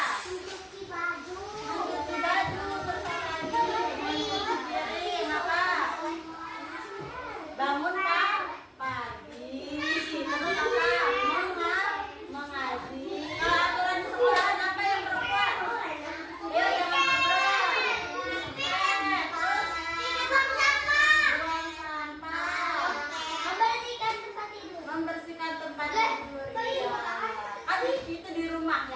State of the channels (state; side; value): identical; both; correlation 1.00